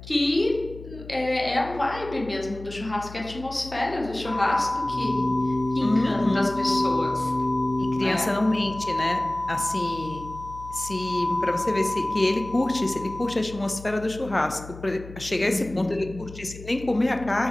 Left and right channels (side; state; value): left; noise; hum, 15 dB below the sound